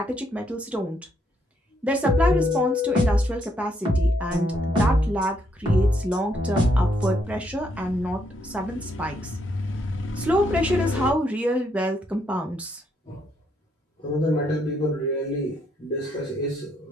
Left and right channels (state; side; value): normal; both; correlation 0.74